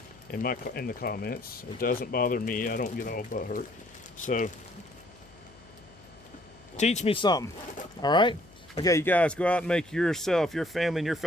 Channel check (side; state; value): left; noise; hum, 25 dB below the sound